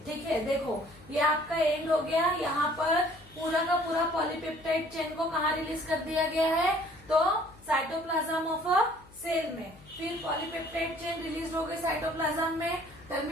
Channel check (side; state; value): left; noise; hum, 24 dB below the sound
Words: ठीक है, देखो ये आपका एंड हो गया. यहाँ पर पूरा का पूरा पॉलीपेप्टाइड चेन को कहाँ रिलीज कर दिया गया है, तो साइटोप्लाज्म ऑफ अ सेल में. फिर पॉलीपेप्टाइड चेन रिलीज हो गई साइटोप्लाज्म में.